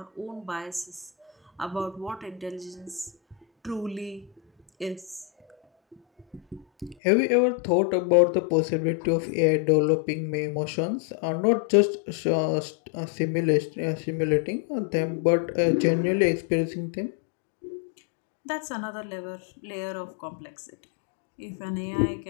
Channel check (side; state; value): right; drops out; at 7.0 s